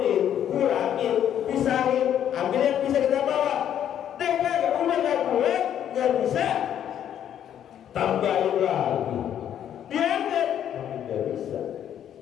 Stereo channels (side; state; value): right; quieter; 10.0 dB